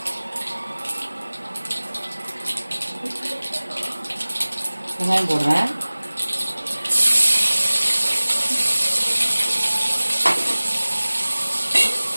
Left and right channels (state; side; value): inverted; both; correlation -1.00